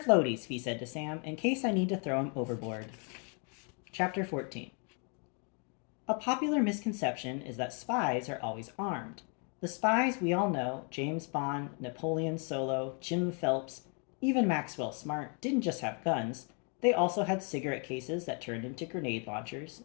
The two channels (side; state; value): right; quieter; 38.1 dB